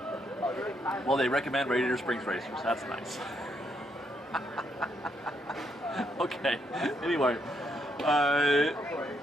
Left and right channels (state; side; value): normal; both; correlation 0.76